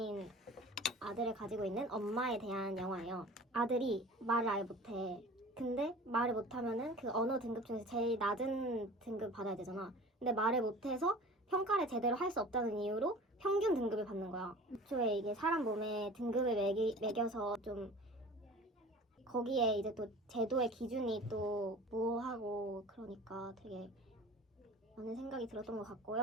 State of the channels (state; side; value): normal; both; correlation 0.41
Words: 아들을 가지고 있는 엄마에 대한 영화예요. 아들이 말을 아예 못해. 근데 말을 못하면은 그 언어 등급 중에서 제일 낮은 등급 받아야 되잖아. 근데 말을 못해서 평가를 제대로 할 수 없다는 이유로 평균 등급을 받는 거야. 애초에 이게 사람 몸에 등급을 매겨서 좀 거기에 이제 또 제도의 기준이 또 모호하고 그러니까 되게 많은 생각이 들었던 것